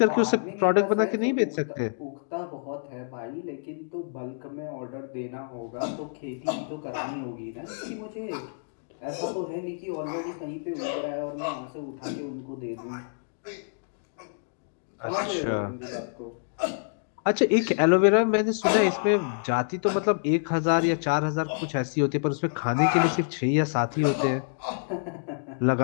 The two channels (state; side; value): silent; right; digital silence